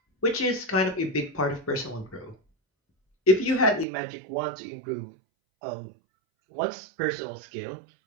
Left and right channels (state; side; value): drops out; left; at 3.9 s